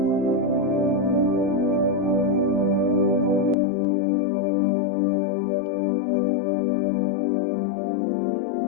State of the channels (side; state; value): right; drops out; at 3.6 s